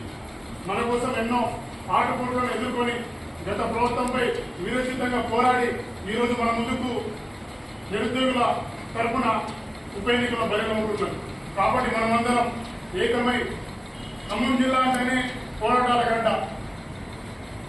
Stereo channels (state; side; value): identical; both; correlation 1.00